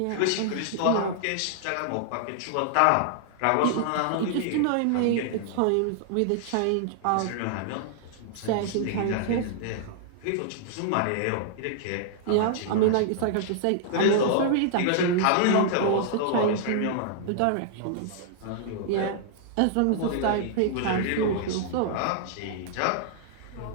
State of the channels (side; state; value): both; different; correlation -0.01